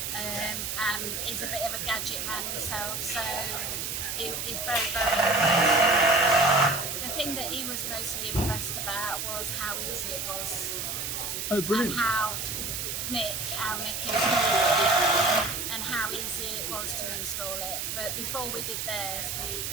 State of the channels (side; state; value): right; noise; hiss, 3 dB below the sound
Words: And he's a bit of a gadget man himself, so he's very, very impressed. The thing that he was mostly impressed about was how easy it was. Oh, brilliant. And how Mick installed it and how easy it was to install it. But before we did theirs,